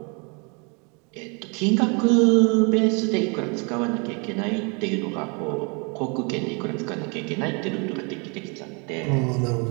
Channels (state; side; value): quieter; left; 33.1 dB